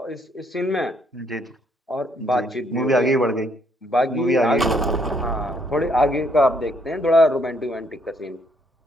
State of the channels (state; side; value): normal; both; correlation 0.70